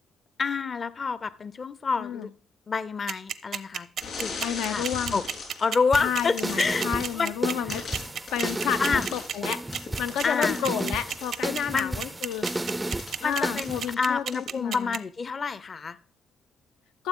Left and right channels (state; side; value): quieter; right; 3.5 dB